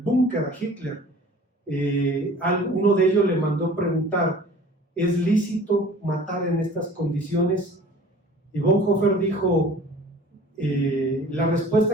a Hitler. Uno de ellos le mandó preguntar: ¿es lícito matar en estas condiciones? Y Bonhoeffer dijo, la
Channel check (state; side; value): normal; both; correlation 0.46